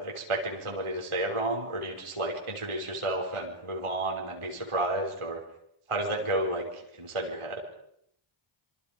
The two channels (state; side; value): late; left; 1.4 ms